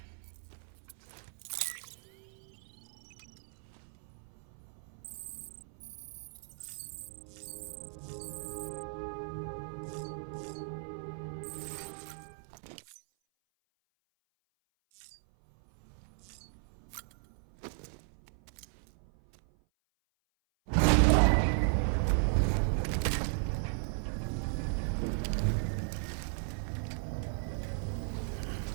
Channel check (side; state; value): left; silent; 54 dB below the other